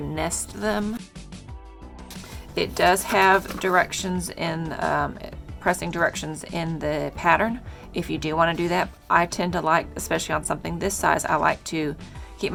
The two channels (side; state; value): both; identical; correlation 1.00